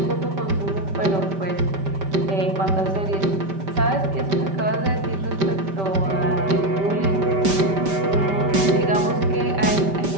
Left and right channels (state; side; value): late; left; 5.1 ms